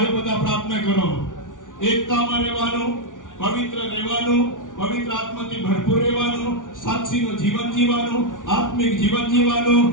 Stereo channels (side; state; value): right; late; 0.88 ms